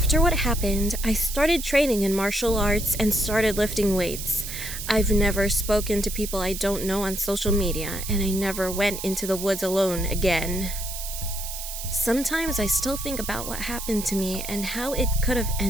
what happened, I started training in martial arts and started lifting weights. I've never spoken to people I don't know on social media, and I never went into the woods alone again. Sometimes I still think about what happened to me and how it could have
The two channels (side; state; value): right; noise; hiss, 8 dB below the sound